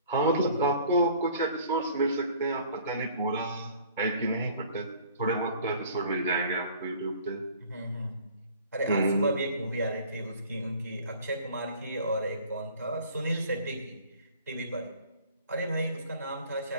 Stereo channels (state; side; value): inverted; both; correlation -0.50